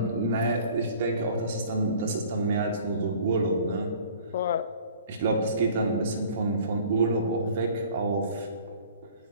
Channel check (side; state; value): both; inverted; correlation -0.49